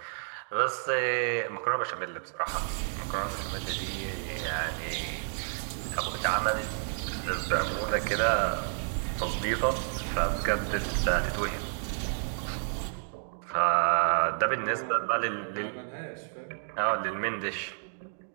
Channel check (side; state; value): left; silent; digital silence